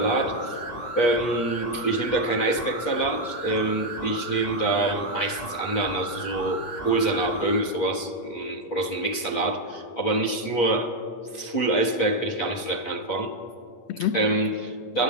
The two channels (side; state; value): right; late; 8.4 ms